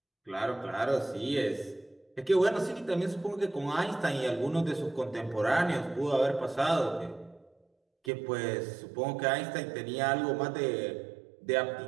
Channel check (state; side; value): drops out; left; at 8.1 s